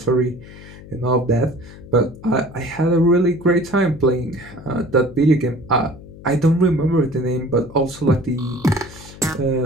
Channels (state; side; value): noise; left; hum, 17 dB below the sound